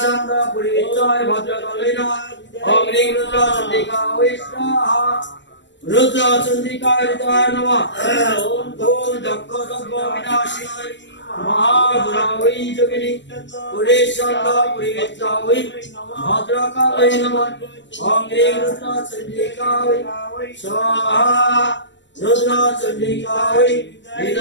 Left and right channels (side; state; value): right; late; 0.53 ms